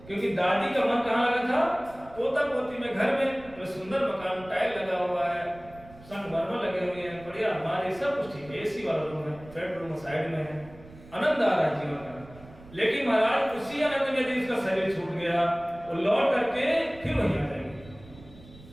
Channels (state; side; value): noise; right; rumble, 20 dB below the sound